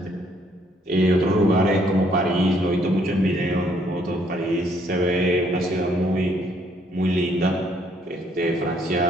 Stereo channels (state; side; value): normal; both; correlation 0.67